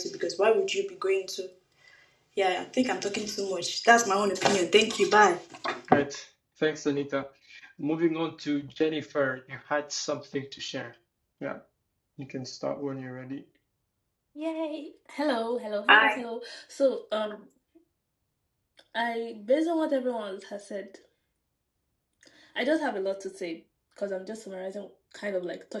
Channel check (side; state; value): both; identical; correlation 1.00